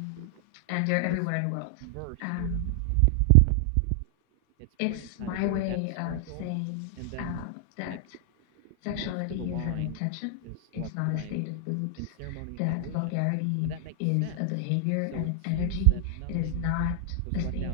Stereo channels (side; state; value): both; different; correlation 0.00